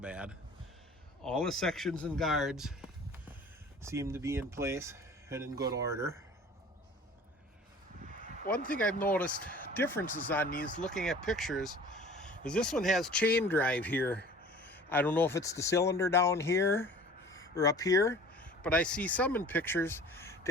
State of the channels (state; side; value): normal; both; correlation 0.45